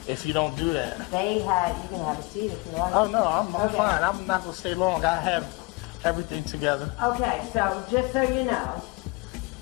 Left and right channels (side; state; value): right; quieter; 25.6 dB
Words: if you don't do that. You can have a seat if you like. Oh no, I'm Okay. fine. I'm not gonna stay long. I have everything together. Okay, so just so you know,